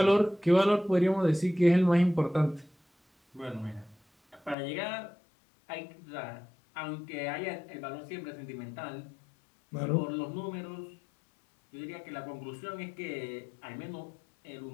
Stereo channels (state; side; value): drops out; right; at 4.5 s